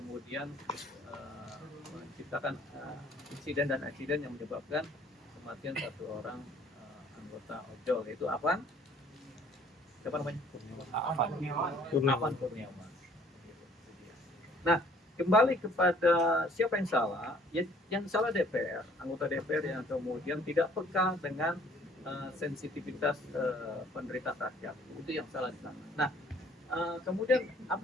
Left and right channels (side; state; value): both; normal; correlation 0.58